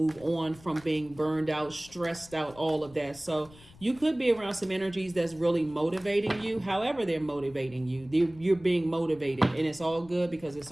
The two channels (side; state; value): left; noise; rumble, 23 dB below the sound